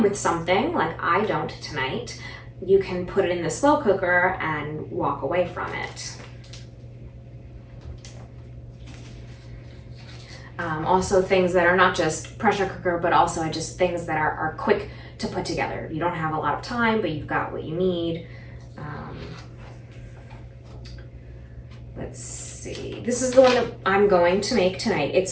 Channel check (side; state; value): both; identical; correlation 1.00